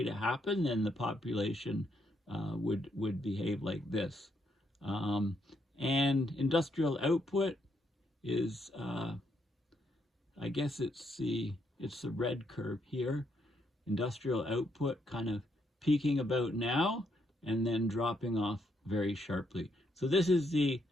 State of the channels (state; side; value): normal; both; correlation 0.75